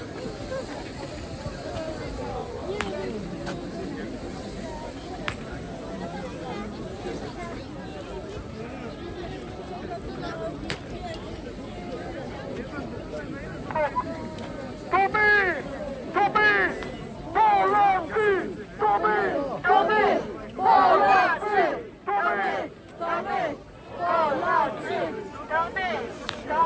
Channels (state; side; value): identical; both; correlation 1.00